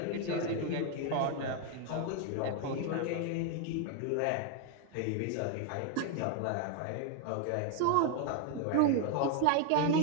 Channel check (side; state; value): both; different; correlation 0.01